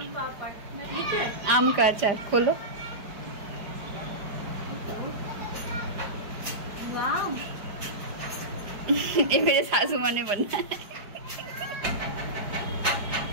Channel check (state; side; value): late; left; 5.0 ms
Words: आम का अचार खोलो। ये मेरे सासू माँ ने बनना है,